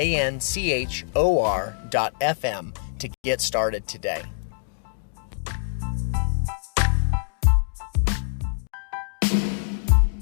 to get started today.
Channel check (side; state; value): right; silent; digital silence